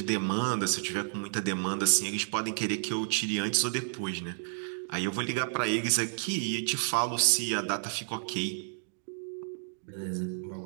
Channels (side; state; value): left; silent; digital silence